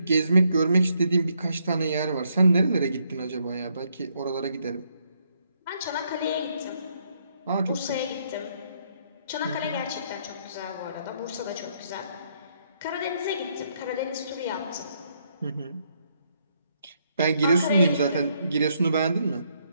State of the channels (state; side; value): inverted; both; correlation -0.74